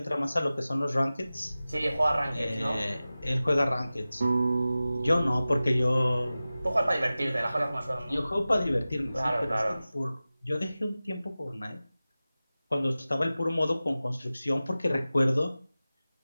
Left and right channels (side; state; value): both; inverted; correlation -0.96